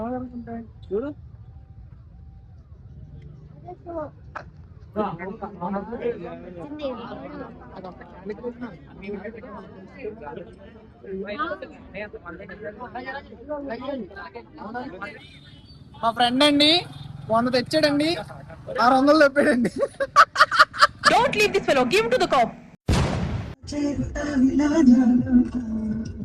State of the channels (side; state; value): both; identical; correlation 1.00